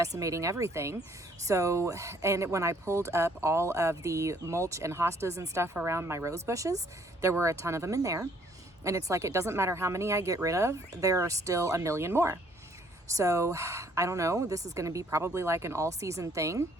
everything. So, and when I pulled up all of the mulch and hostas and stuff around my rose bushes, there were a ton of them in there. And it's like, it doesn't matter how many I get rid of, there are still a million more. So I don't know, this is going to be probably like an all season thing.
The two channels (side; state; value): both; normal; correlation 0.63